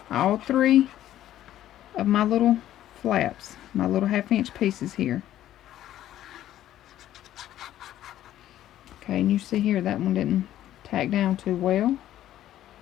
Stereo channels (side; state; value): right; quieter; 12.7 dB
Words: All 3 of my little flaps, my little 1/2" pieces here. Okay, and you see here that one didn't tack down too well.